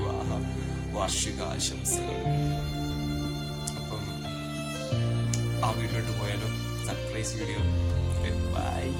വാർഷികാശംസകൾ. അപ്പം ആ വീഡിയോട്ട് പോയാലോ? Surprise video. ബൈ.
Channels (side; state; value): both; identical; correlation 1.00